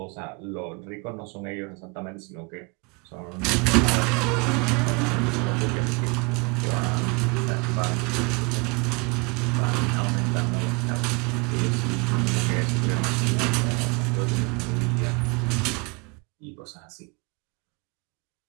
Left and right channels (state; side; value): quieter; left; 30.6 dB